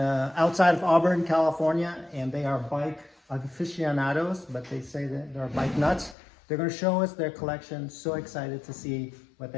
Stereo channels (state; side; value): drops out; right; at 6.2 s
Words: of Auburn, California, and they are bike aficionados, but they say that they're bike nuts. They're going to show us their collection. So excited to see what